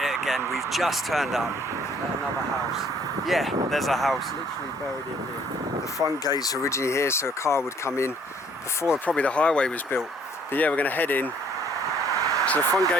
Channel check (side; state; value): both; normal; correlation 0.61